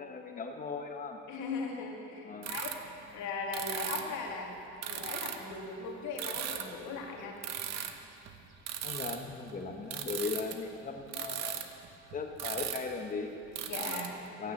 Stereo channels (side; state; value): both; normal; correlation 0.13